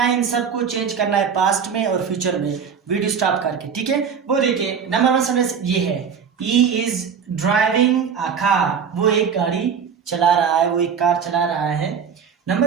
इन सबको चेंज करना है पास्ट में और फ्यूचर में, वीडियो स्टॉप करके, ठीक है। वो देखिए, नंबर 1 सेंटेंस ये है, he is driving a car, वो एक गाड़ी चला रहा है, वो एक कार चला रहा है।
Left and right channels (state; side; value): quieter; left; 6.8 dB